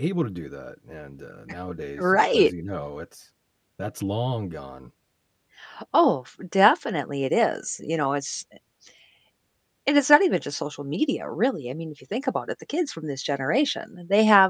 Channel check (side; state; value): both; identical; correlation 1.00